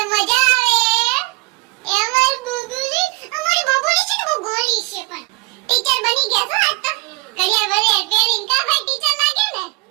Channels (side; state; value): left; quieter; 29.9 dB